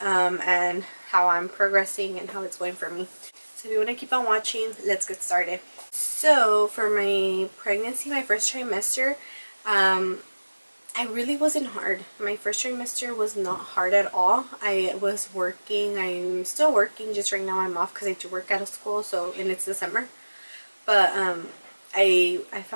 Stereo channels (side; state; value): both; inverted; correlation -1.00